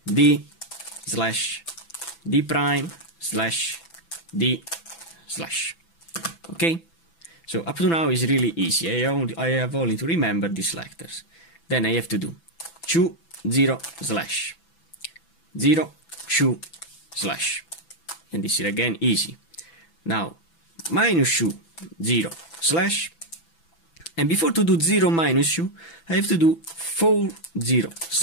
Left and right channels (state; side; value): late; right; 6.0 ms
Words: D slash D prime slash D slash. Okay? So up to now is really easy. I have only to remember these lectors. Then I have to do 2, 0, slash 0, 2, slash. And this is again easy. Now minus 2, 0, slash. And before to do 0 minus 2, I have to do 4, 0,